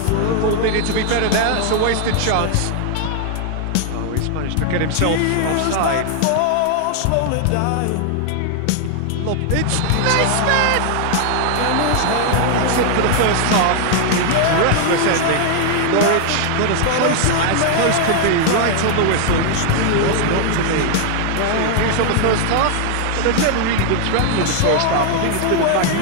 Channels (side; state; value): both; different; correlation 0.00